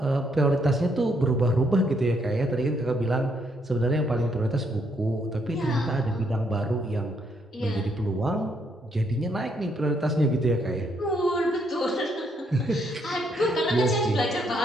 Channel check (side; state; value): both; normal; correlation 0.73